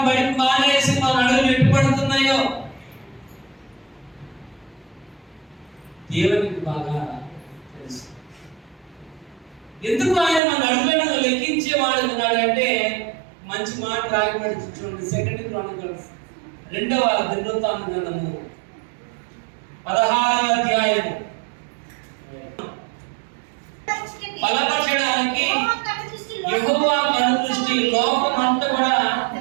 బయట మానేసి మన అడుగులు ఎటు పడుతున్నాయో దేవునికి బాగా తెలుసు. ఎందుకు ఆయన మన అడుగులను లెక్కించేవాడు ఉన్నాడంటే మంచి మాట రాయబడి చూడండి. 2 క్రానికల్స్ 2వ దినవృత్తాంతము 16వ అధ్యాయము. బలపరచడానికి యెహోవా కనుదృష్టి లోకమంతా కూడా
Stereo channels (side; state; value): left; drops out; at 10.4 s